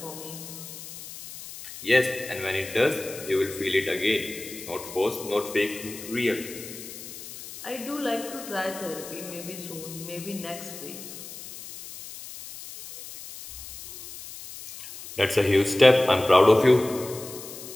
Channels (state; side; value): noise; left; hiss, 13 dB below the sound